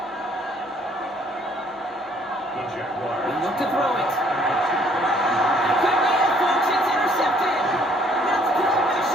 The Jaguars. They look to throw it. Could be it, folks. It's intercepted. That's Bill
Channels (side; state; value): both; normal; correlation 0.62